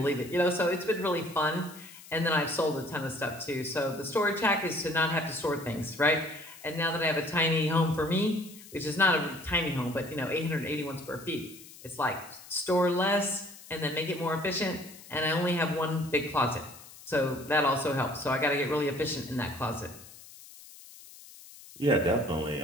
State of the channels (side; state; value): left; noise; hiss, 19 dB below the sound